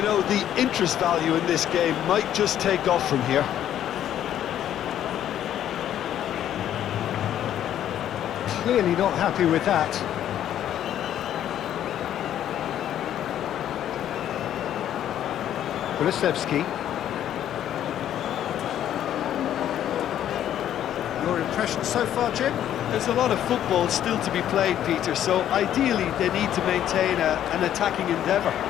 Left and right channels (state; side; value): quieter; right; 10.9 dB